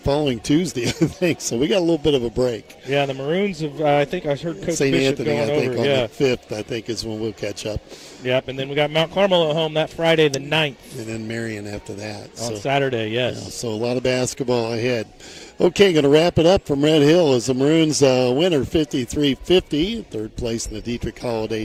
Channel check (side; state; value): both; identical; correlation 1.00